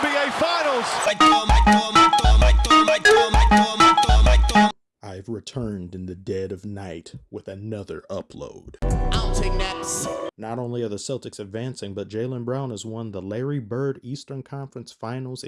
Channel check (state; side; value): identical; both; correlation 1.00